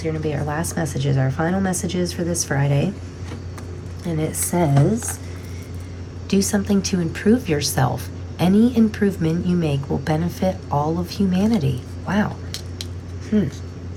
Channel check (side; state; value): both; identical; correlation 1.00